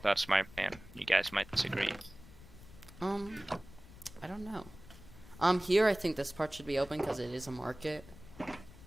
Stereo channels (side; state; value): left; noise; rumble, 19 dB below the sound